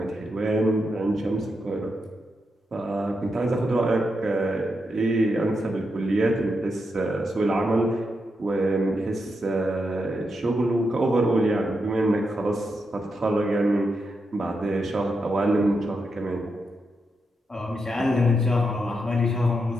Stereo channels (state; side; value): normal; both; correlation 0.84